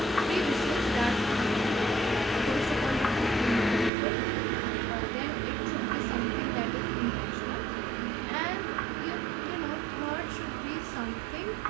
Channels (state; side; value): drops out; left; at 3.9 s